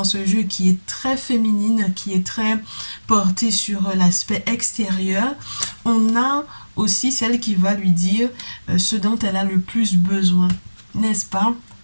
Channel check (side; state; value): both; inverted; correlation -1.00